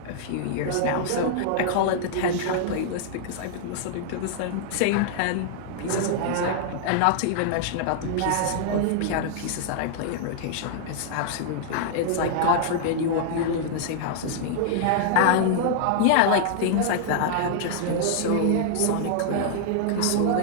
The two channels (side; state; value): both; different; correlation -0.01